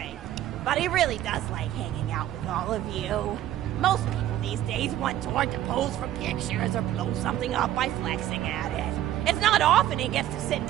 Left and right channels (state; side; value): quieter; left; 12.8 dB